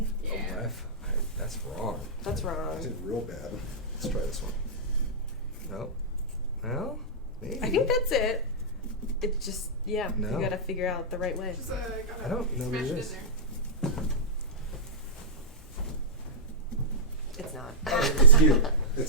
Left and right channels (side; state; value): both; normal; correlation -0.16